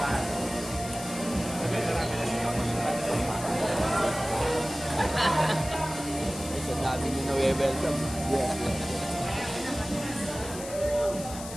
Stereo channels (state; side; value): noise; left; hiss, 12 dB below the sound